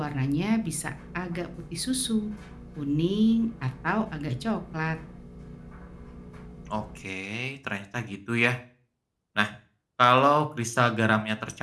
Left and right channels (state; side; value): identical; both; correlation 1.00